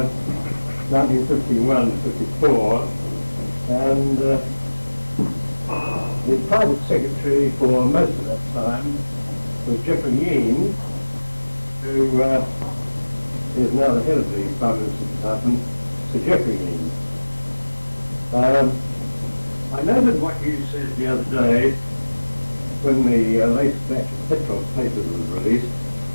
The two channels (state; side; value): inverted; both; correlation -1.00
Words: 1951-54, and the private secretary for most of that time was Jeffrey Yean, who is now the head of the Prime Minister's Department, Sir Jeffrey Yean. I noted what you said the other day when the latest batch of petrol papers was released,